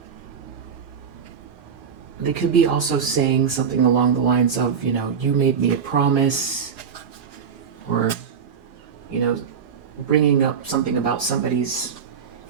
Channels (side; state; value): left; quieter; 6.9 dB